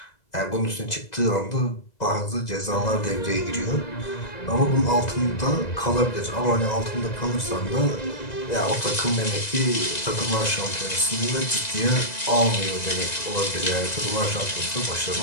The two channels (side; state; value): right; late; 2.0 ms